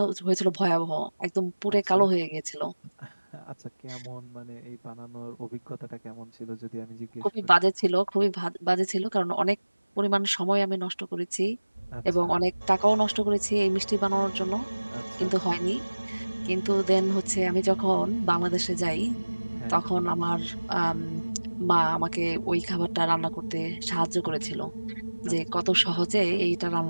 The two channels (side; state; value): both; inverted; correlation -1.00